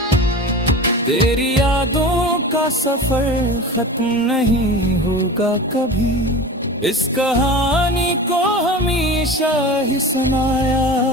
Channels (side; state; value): both; normal; correlation 0.33